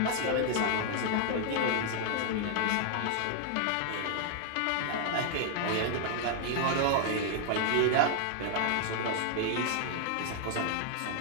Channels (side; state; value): both; different; correlation 0.00